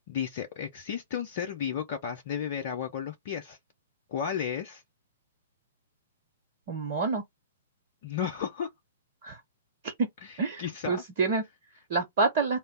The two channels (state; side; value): inverted; both; correlation -0.37